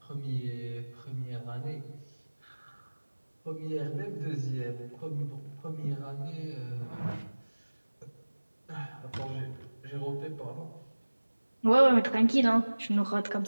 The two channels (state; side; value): inverted; both; correlation -1.00